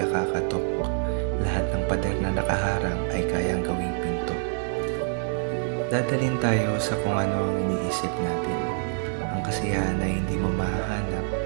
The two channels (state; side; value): silent; left; digital silence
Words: kakatok. Lahat ng pader na nakaharang ay kayang gawing pinto. Dadalhin tayo sa kung ano ang iniisip natin. Ang kasiyahan ay hindi mo mahahanap